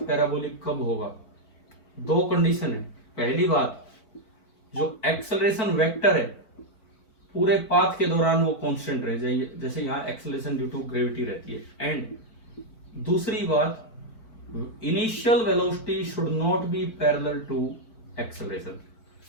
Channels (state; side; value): late; right; 4.5 ms